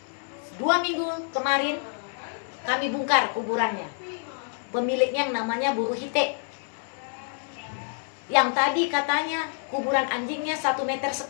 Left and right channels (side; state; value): right; silent; 60 dB below the other